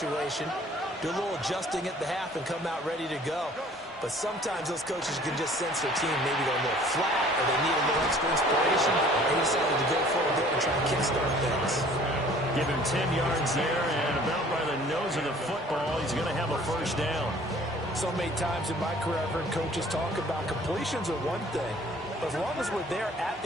Do a little adjusting at the half and come out ready to go. But sometimes those coaches can just sense their team maybe go a little flat or they need a little extra inspiration. They decided to go for it there and try and kickstart things. Give him 10 yards there, and about by the nose of the football, he's going to have a first down. So many times in my career, I've heard coaches talk about completions are one thing. But as long as we're there at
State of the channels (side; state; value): both; normal; correlation 0.52